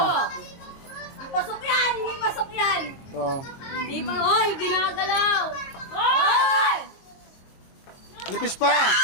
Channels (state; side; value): late; right; 22 ms